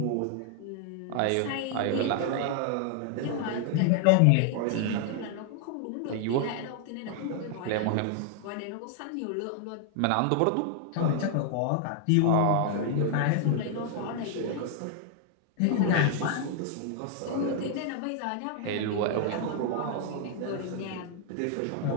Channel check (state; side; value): different; both; correlation 0.00